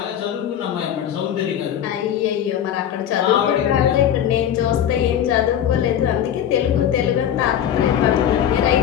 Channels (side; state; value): right; quieter; 10.0 dB